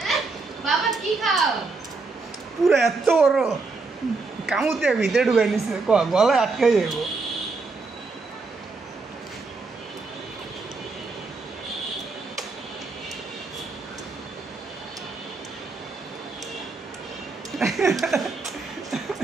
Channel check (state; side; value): quieter; left; 4.0 dB